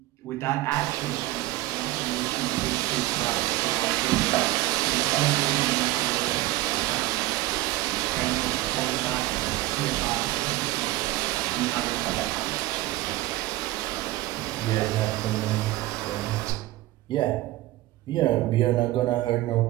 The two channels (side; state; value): left; quieter; 17.2 dB